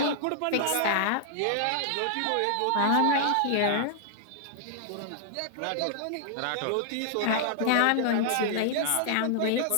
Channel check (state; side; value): different; both; correlation -0.01